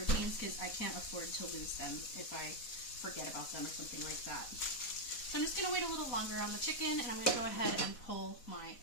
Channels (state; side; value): late; right; 4.1 ms